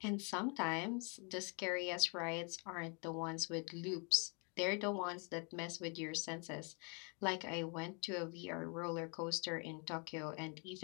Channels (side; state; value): right; quieter; 36.0 dB